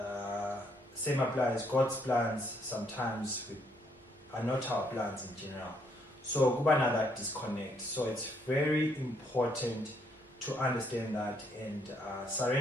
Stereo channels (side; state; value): both; normal; correlation 0.71